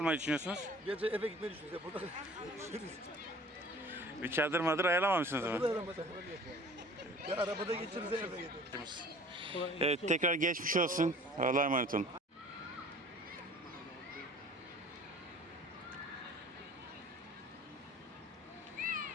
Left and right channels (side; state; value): both; normal; correlation 0.47